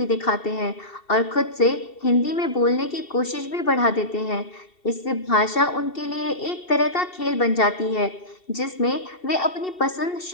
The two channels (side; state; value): right; late; 2.7 ms